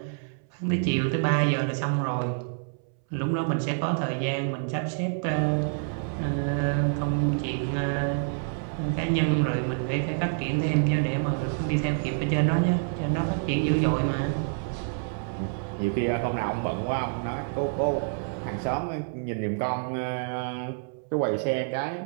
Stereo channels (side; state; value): left; silent; 60 dB below the other